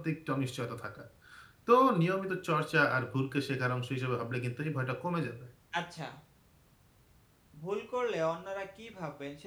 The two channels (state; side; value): identical; both; correlation 1.00